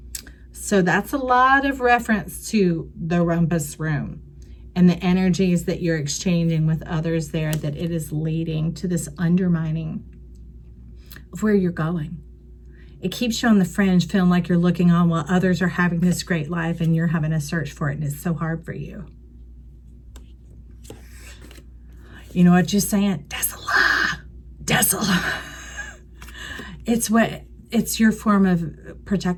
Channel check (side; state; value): both; identical; correlation 1.00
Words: So that's a lot of reference to the rumpus room and the energies that you're exchanging with others there, that it is leading to this undermining of where you're going. It keeps you on the fringe, feeling like you're looking on while others are having this great life and you're having to search for it, and it's so hard for you. You know what you're saying? Desola. Desola. It's your form of